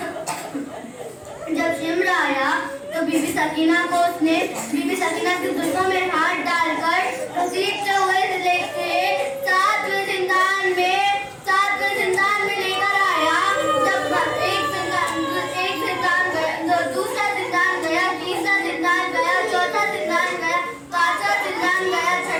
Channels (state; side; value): identical; both; correlation 1.00